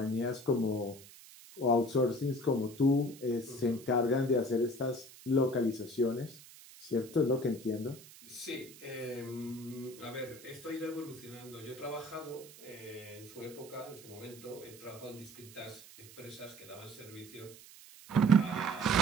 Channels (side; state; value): right; noise; hiss, 19 dB below the sound